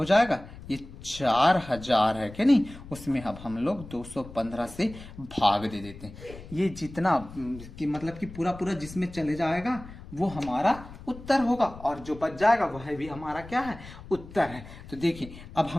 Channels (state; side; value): noise; left; rumble, 16 dB below the sound